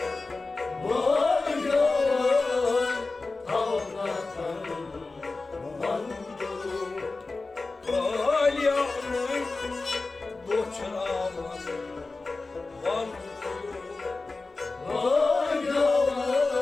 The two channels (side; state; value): right; quieter; 3.6 dB